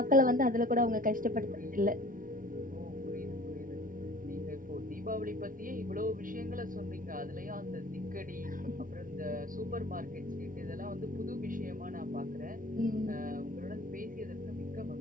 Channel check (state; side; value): late; left; 0.39 ms